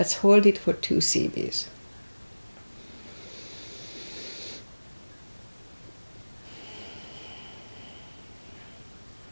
hold it for 2 CBs.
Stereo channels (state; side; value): inverted; both; correlation -1.00